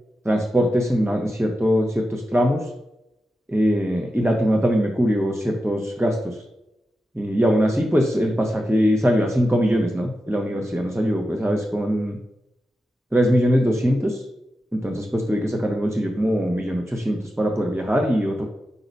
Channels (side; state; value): both; normal; correlation 0.90